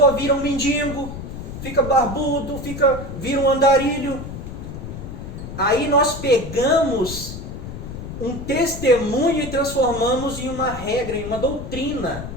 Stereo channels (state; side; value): noise; left; rumble, 9 dB below the sound